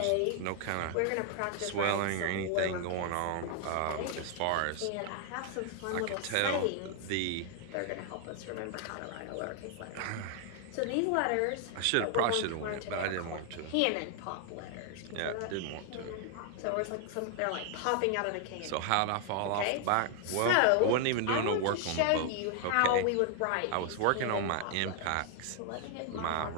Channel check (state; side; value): different; both; correlation 0.00